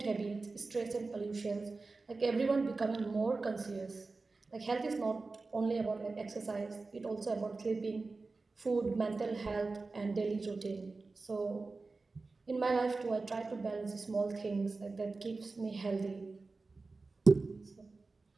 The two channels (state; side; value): quieter; left; 3.8 dB